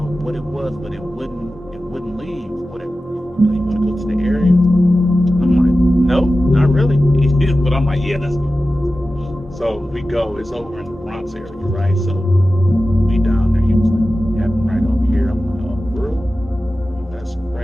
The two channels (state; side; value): normal; both; correlation 0.94